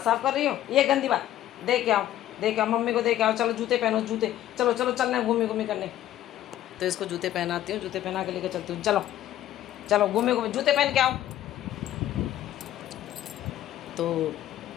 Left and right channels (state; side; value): quieter; right; 12.9 dB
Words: साफ़ कर रही हो, ये गंदी बात। देख के आओ, देख आओ, मम्मी को देख आओ। चलो जूते पहनो, जूते। चलो चलो चलना है घूमी घूमी करने। तो इसको जूते पहनाती हूँ, जूते पहना के लेकर चलती हूँ। चलो चलो घूमे घूमे, जूते पहन के आओ। तो